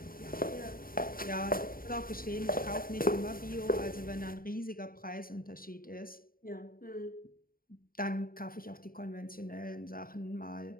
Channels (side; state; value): right; late; 0.42 ms